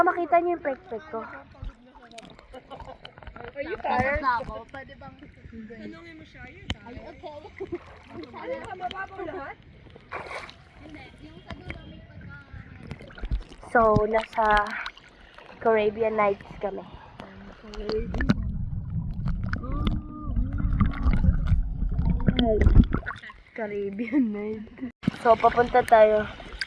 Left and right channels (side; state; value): both; identical; correlation 1.00